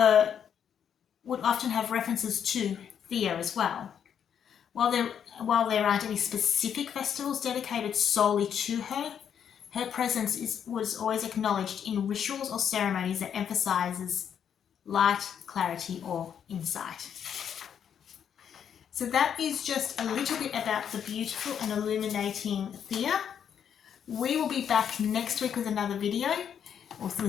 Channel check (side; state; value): right; quieter; 8.4 dB